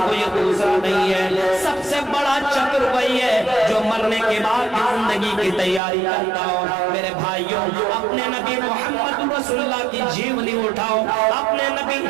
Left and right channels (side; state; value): left; drops out; at 5.8 s